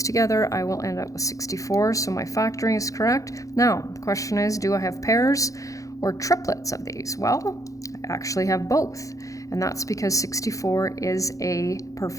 together, I will end up with 64. So my factoring is correct. Now, the question is, do I have pairs or triplets of these? Well, I actually have both. And that's because 64 is a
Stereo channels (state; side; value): late; right; 0.16 ms